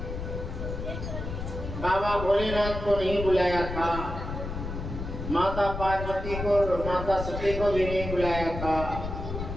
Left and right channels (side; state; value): left; noise; rumble, 6 dB below the sound